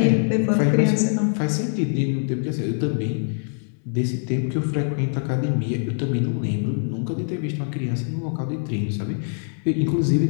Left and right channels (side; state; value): right; silent; 63 dB below the other